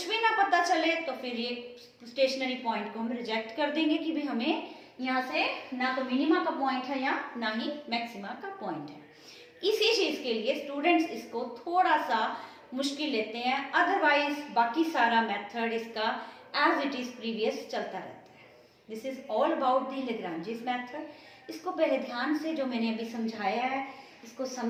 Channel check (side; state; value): both; identical; correlation 1.00